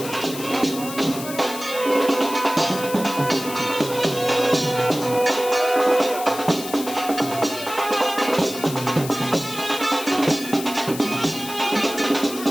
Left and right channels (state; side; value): noise; left; hiss, 11 dB below the sound